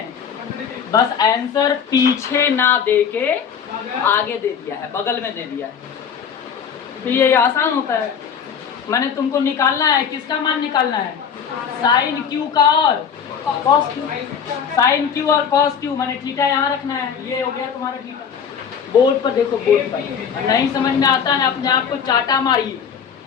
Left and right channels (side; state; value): right; quieter; 7.2 dB